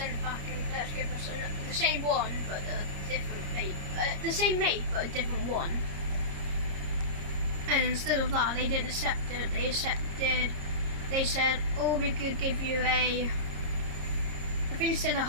it back and let us give us the same one, but a different make. The same make, but a different one. And instead of that, they didn't accept it. They said, oh, we could give you I think they said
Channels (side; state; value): left; late; 30 ms